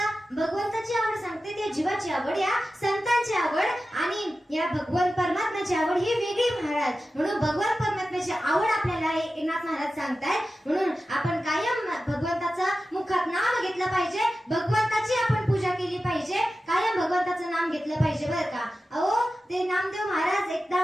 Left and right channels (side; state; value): both; normal; correlation 0.93